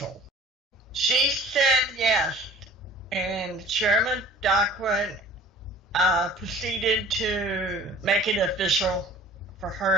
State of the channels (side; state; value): both; normal; correlation 0.47